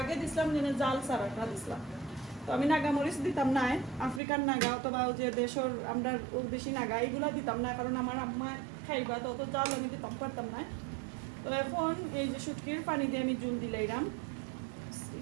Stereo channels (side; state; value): left; drops out; at 4.2 s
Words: দিছিলাম যেন জাল সারাটা দিছিলাম তো আমি নাগামরিচ দিতাম না আফ্রিকান নাগা অথবা যে দেশের আমরা বেশি নাগা এগুলা দিতাম না কারণ আমার আম্মা খাইবা তো অত জাল আমি দিতাম পারতাম না তো এখন এই যে শুটকির পানি দিয়ে আমি জল দিলাইরাম